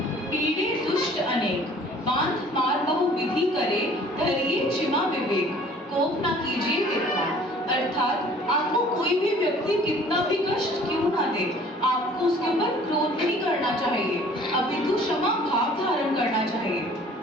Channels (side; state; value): both; normal; correlation 0.52